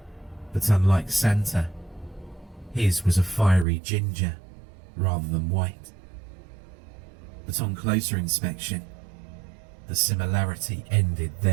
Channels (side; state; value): left; drops out; at 3.7 s